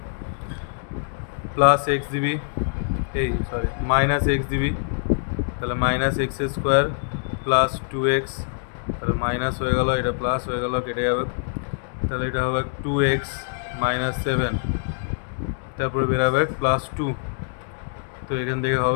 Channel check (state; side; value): silent; right; digital silence